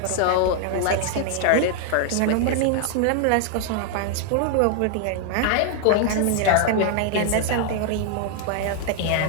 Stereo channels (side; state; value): both; different; correlation 0.00